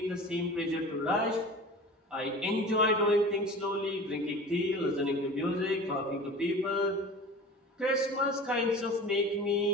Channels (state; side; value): normal; both; correlation 0.37